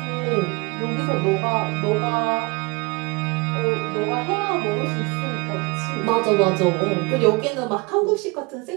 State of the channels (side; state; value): left; quieter; 26.9 dB